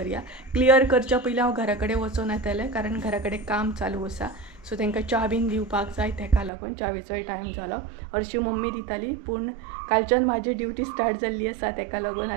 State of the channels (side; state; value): left; drops out; at 6.5 s